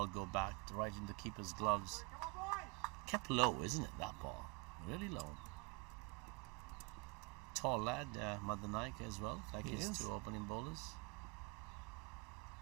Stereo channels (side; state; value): left; quieter; 29.1 dB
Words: go back right into the keeper's gloves. Kept low, isn't it, that ball? Really low. Tall lad, Madanayaka as well, like his 2 opening bowlers.